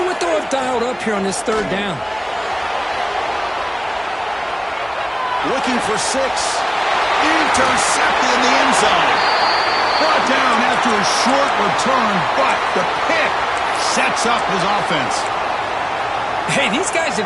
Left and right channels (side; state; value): both; identical; correlation 1.00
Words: what they'll have dialed up here on this third down. Looking for 6. Intercepted in the end zone. Brought down after a short return, but the pick sets up his offense. Hey, these guys have